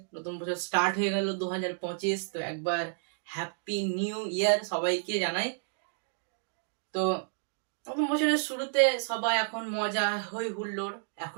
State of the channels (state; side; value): silent; left; digital silence